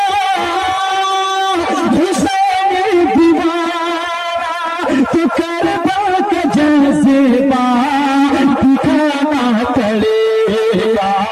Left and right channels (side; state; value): both; identical; correlation 1.00